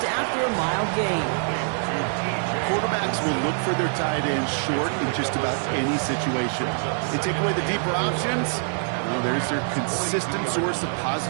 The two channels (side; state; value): left; silent; 62 dB below the other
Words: after a mild gain. Quarterbacks will look for their tight ends short in just about any situation. They take away the deeper options. Well, there's their consistent source of